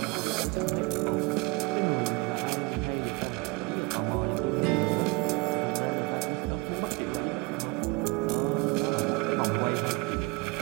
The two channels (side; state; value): left; quieter; 26.2 dB